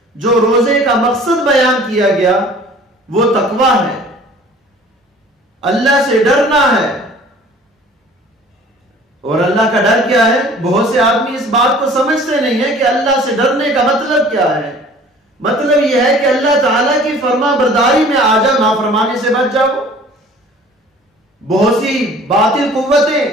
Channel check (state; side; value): normal; both; correlation 0.49